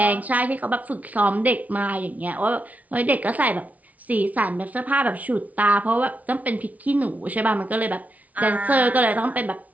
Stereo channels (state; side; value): late; left; 0.072 ms